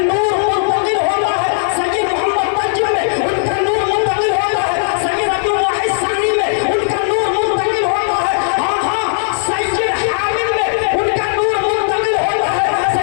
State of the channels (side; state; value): right; silent; digital silence